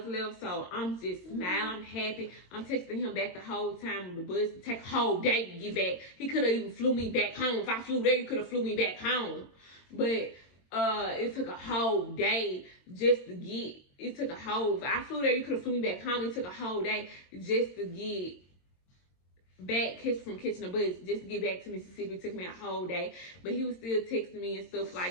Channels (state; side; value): late; right; 22 ms